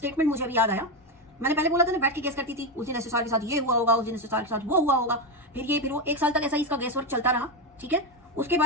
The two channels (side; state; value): both; normal; correlation 0.12